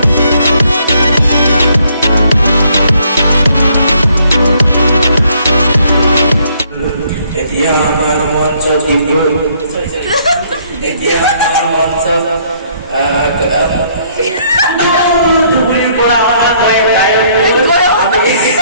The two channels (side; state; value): both; inverted; correlation -0.66